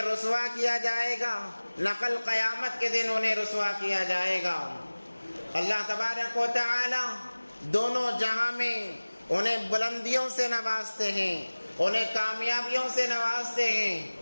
رسوا کیا جائے گا، نہ کل قیامت کے دن انہیں رسوا کیا جائے گا۔ اللہ تبارک و تعالی دونوں جہاں میں انہیں بلندیوں سے نوازتے ہیں، انہیں کامیابیوں سے نوازتے ہیں۔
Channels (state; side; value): inverted; both; correlation -1.00